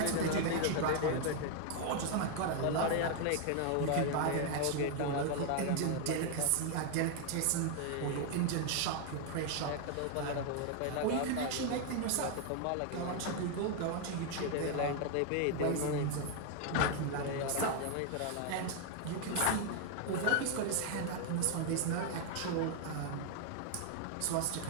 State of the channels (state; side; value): different; both; correlation 0.00